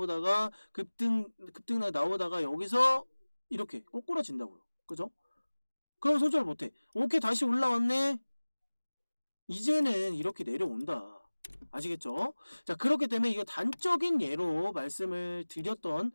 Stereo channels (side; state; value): both; inverted; correlation -1.00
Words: 급등락 나오다가 여기서 이렇게 꼬꾸라진다고요. 그죠? 그럼 손절 못해. 오케이 다시 올라왔네. 이제는 이렇게 내려온다. 아시겠죠? 자 그렇기 때문에 이거 단적인 예로 말씀을 드렸던